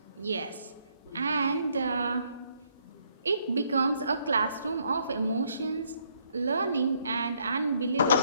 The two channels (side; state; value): both; inverted; correlation -0.71